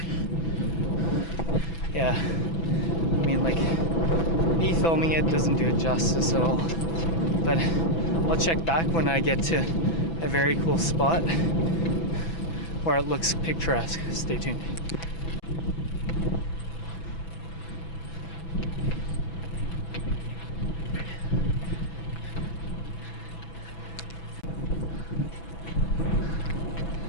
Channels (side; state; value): right; late; 6.0 ms